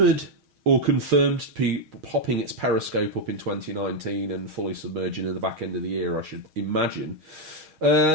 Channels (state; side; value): late; left; 6.4 ms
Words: or confirmed to be popping its periscope up in 2019 and fully submerging in the back end of the year, I should imagine.